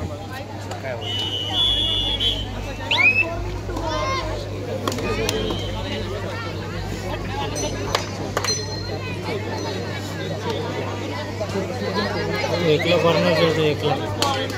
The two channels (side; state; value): both; identical; correlation 1.00